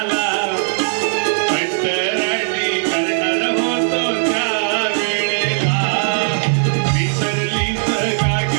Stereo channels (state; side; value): silent; left; 56 dB below the other